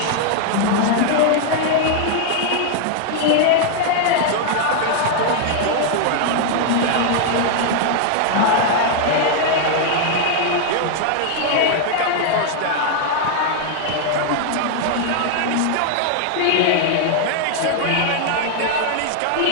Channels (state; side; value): different; both; correlation 0.00